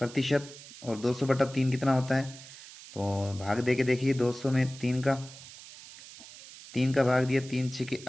और 200/3 कितना होता है? तो भाग दे के देखिए, 200 में 3 का भाग दिया, 3 6 के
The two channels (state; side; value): noise; right; hiss, 17 dB below the sound